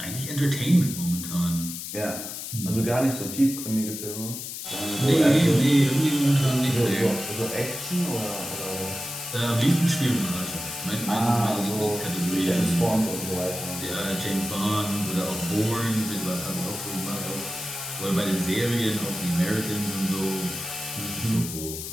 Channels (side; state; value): left; noise; hiss, 7 dB below the sound